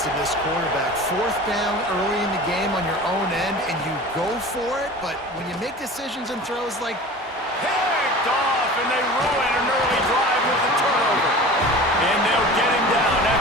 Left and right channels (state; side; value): normal; both; correlation 0.38